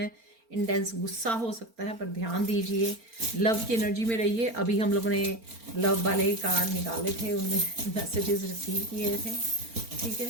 इंटेंस गुस्सा हो सकता है, पर ध्यान दीजिए, लव की एनर्जी में रहिए। अभी हम लोगों ने लव वाले कार्ड निकाले थे, उनमें मैसेजेस रिसीव किए थे। ठीक है,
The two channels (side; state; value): left; late; 4.4 ms